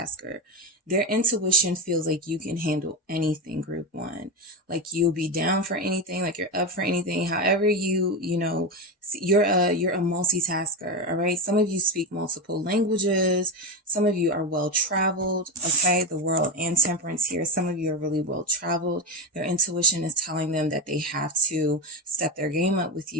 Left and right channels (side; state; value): both; normal; correlation 0.15